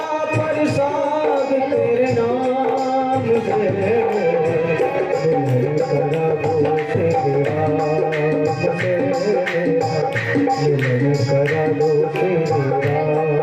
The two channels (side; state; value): both; identical; correlation 1.00